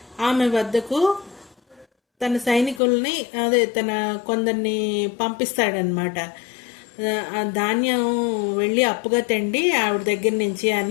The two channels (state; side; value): drops out; right; at 2.8 s